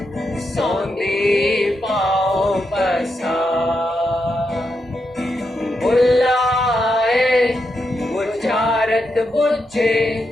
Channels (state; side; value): normal; both; correlation 0.84